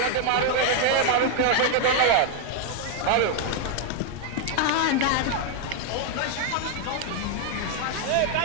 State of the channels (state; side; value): different; both; correlation 0.00